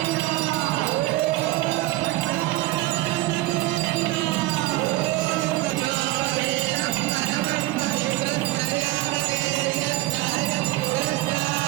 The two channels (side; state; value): left; quieter; 18.0 dB